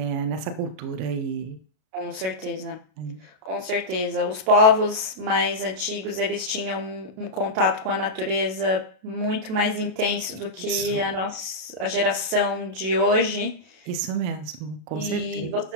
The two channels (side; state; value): left; late; 32 ms